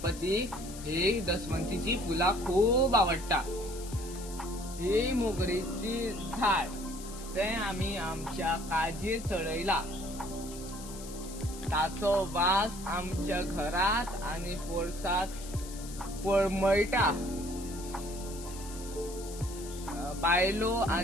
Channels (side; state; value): left; noise; hiss, 14 dB below the sound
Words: ही दशवंतीची फुला खूप आवडता. ही मोगरीची झाड ते आम्ही आमच्या काजीर चढयला. ताचो वास आमच्या घरात आणि पोरसात पळमळटा. बायलो